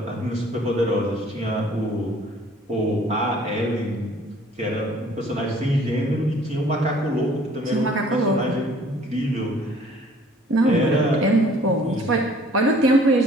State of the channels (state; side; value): normal; both; correlation 0.55